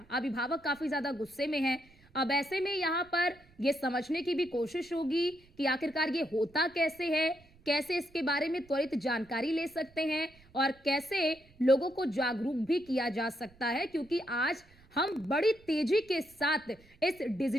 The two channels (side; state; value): right; noise; rumble, 27 dB below the sound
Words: अभिभावक काफी ज्यादा गुस्से में हैं। अब ऐसे में यहाँ पर ये समझने की भी कोशिश होगी कि आखिरकार ये होता कैसे है, कैसे इसके बारे में त्वरित जानकारी ले सकते हैं और कैसे लोगों को जागरूक भी किया जा सकता है, क्योंकि आज हम बड़ी तेजी के साथ इस